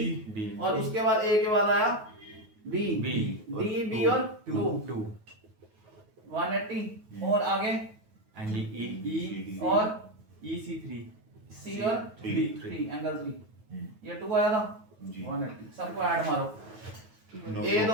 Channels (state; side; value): late; left; 9.3 ms